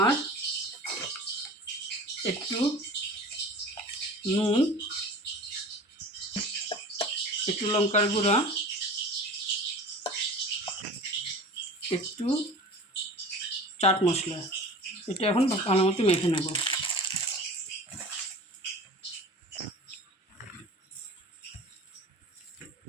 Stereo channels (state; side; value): normal; both; correlation 0.39